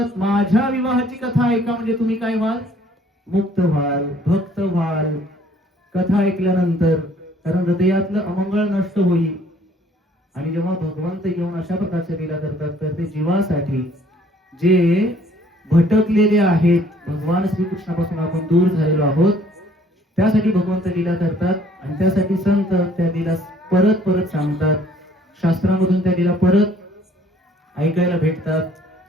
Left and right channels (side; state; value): both; normal; correlation 0.59